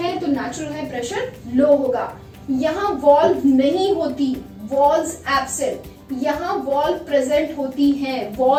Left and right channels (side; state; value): both; identical; correlation 1.00